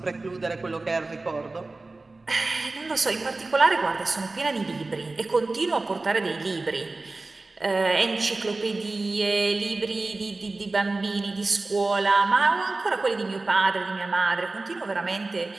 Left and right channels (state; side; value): quieter; left; 3.3 dB